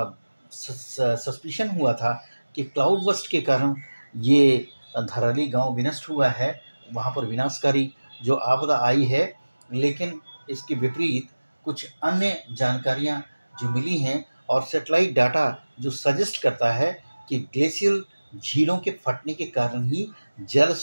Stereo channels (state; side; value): inverted; both; correlation -1.00